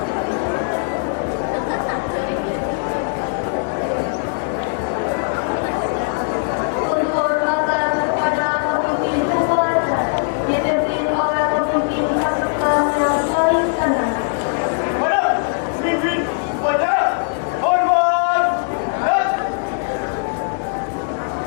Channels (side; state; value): right; silent; digital silence